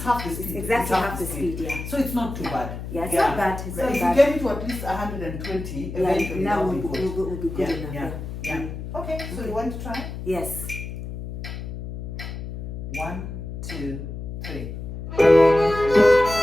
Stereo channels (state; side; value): noise; left; hum, 8 dB below the sound